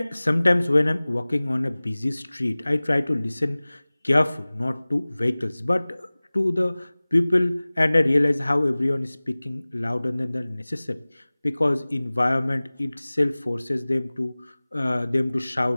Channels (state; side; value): inverted; both; correlation -0.99